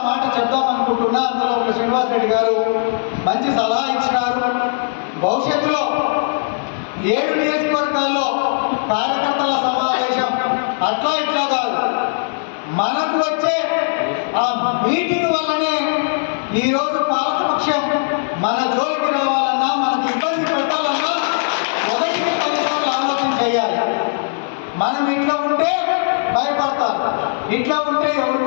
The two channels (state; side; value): silent; right; digital silence